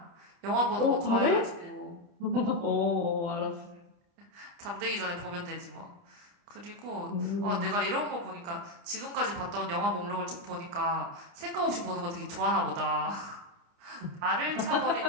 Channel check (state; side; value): late; left; 29 ms